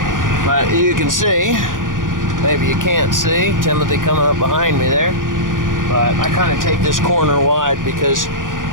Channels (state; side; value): late; left; 0.89 ms